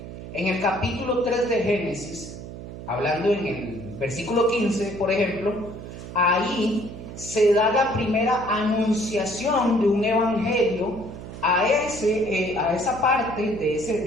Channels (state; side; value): noise; right; hum, 11 dB below the sound